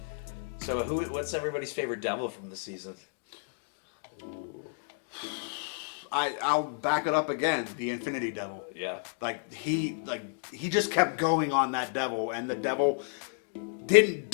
So, what's everybody's favorite devil from the season? I'll back it up again. The Infinity Devil. Yeah. He just kept going on that devil, and the devil didn't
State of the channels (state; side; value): silent; right; 57 dB below the other